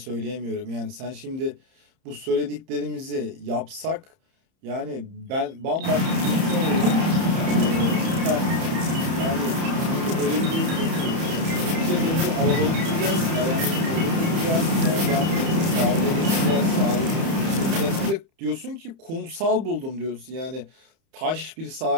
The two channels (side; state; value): left; late; 30 ms